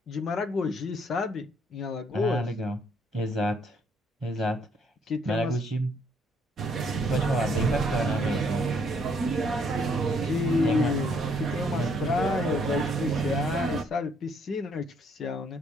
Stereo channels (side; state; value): both; normal; correlation 0.67